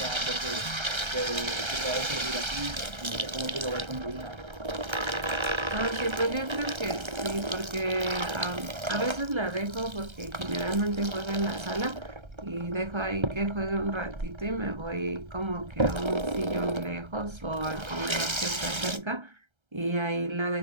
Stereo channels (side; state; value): left; late; 1.3 ms